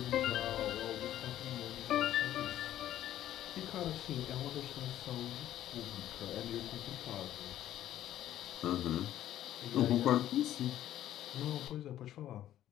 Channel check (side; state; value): right; quieter; 12.4 dB